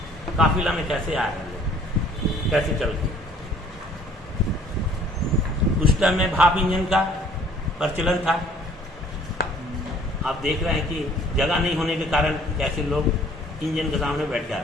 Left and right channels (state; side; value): normal; both; correlation 0.56